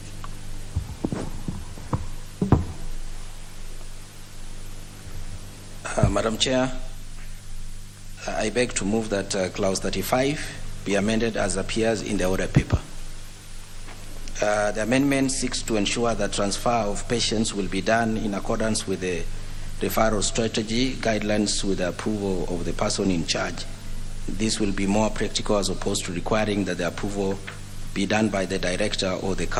Madam Chair, I beg to move that Clause 35 be amended as appears in the order paper. The amendment seeks to ensure that transfer of patients will be done in accordance with the referral strategy guidelines with the approval of the person in charge. This will be more practical as opposed to requiring that the approval be done by the director or the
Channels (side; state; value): both; identical; correlation 1.00